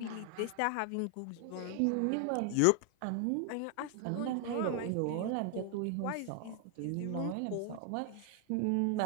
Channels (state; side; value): different; both; correlation 0.00